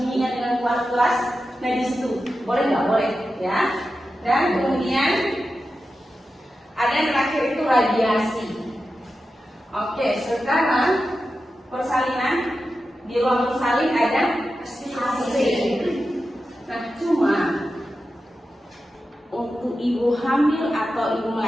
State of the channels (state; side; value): normal; both; correlation 0.91